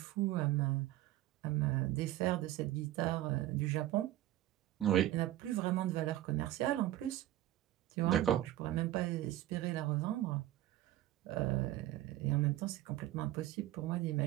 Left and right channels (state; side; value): quieter; left; 14.6 dB